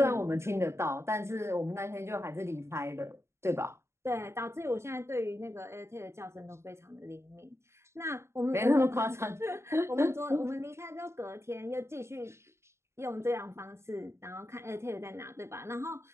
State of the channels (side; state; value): left; late; 0.13 ms